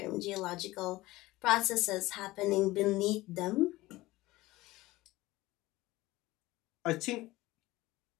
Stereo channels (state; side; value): quieter; right; 18.7 dB